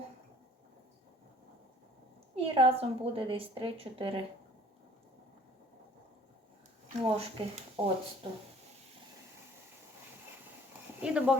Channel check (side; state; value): both; normal; correlation 0.54